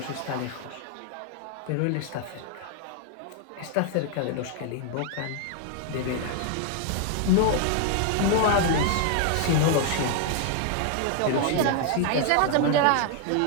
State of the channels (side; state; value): both; different; correlation 0.00